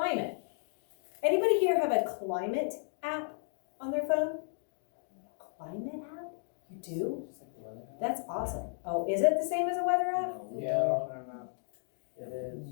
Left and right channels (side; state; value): right; silent; digital silence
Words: Anybody here have a climate app on their phone? Climate app? You do? That's awesome. Oh, is it the same as a weather app? Yeah. It is.